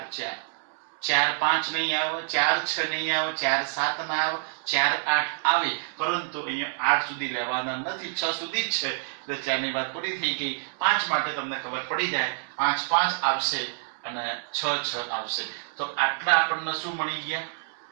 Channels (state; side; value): silent; left; digital silence